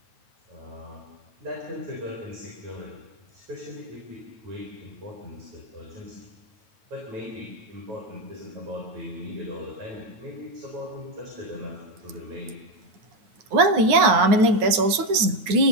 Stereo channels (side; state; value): left; late; 9.2 ms